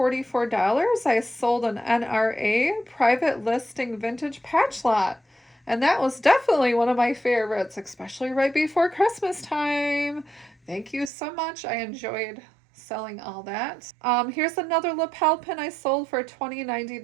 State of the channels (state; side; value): drops out; left; at 11.1 s